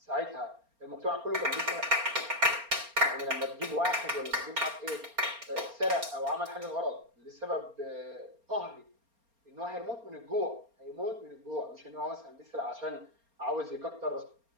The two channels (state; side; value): late; left; 4.3 ms